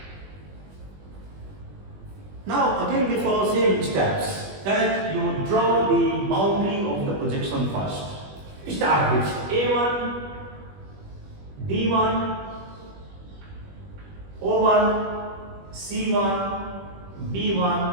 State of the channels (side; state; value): left; late; 21 ms